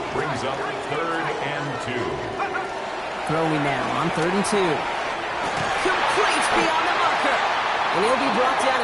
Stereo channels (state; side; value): identical; both; correlation 1.00